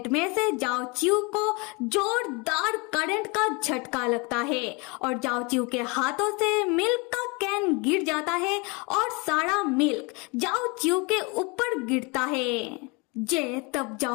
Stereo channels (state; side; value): quieter; right; 28.9 dB